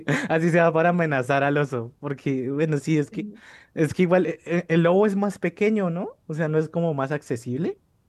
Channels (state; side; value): identical; both; correlation 1.00